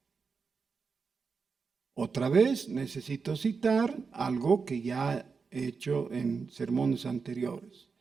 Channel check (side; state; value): left; quieter; 5.1 dB